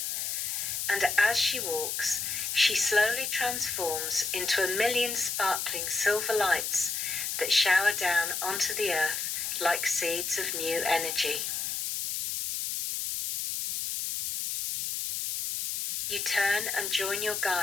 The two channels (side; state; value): left; noise; hiss, 2 dB below the sound